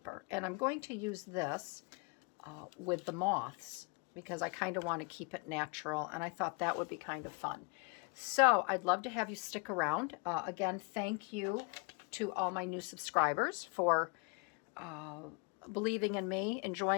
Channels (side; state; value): right; quieter; 32.4 dB